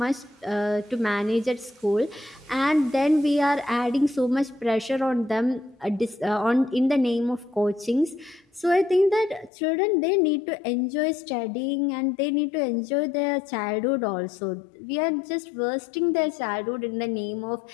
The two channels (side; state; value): right; drops out; at 9.5 s